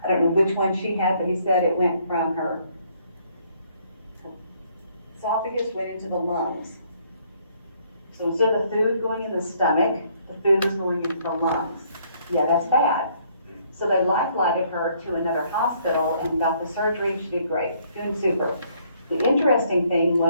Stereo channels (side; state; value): both; inverted; correlation -0.66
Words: I don't know which one she had, but he said it went from her esophagus went into the lungs. So instead of the food going in the stomach, the food was going into the lungs. Yeah, that's bad. So they life-flighted her to another hospital and got the surgery. She did great, doing super. The interesting thing